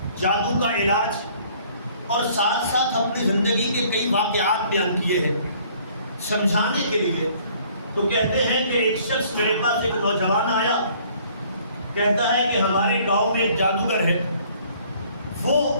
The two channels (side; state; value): both; inverted; correlation -0.58